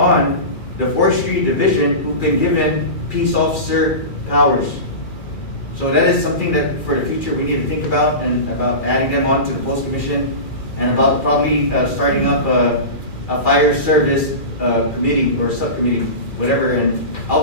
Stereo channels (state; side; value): late; right; 2.4 ms